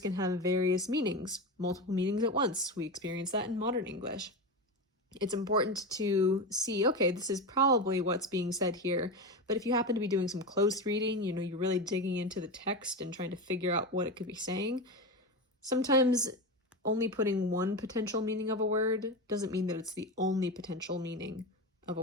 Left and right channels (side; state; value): both; normal; correlation 0.20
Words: have various meanings, multiple meanings at once. We experience that in modern English. It's important to see, okay, this is probably what's being said here, but if you happen to be doing some close reading, you're really digging into the text and trying to figure out what it could be saying, sometimes only putting one potential meaning of a word doesn't mean that it's the only potential meaning of